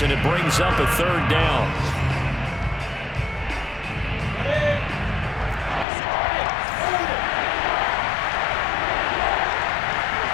and it brings up a 3rd down.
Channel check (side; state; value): right; drops out; at 5.9 s